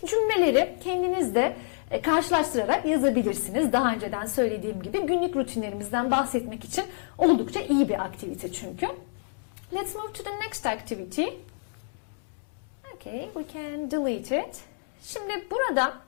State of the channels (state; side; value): silent; right; 59 dB below the other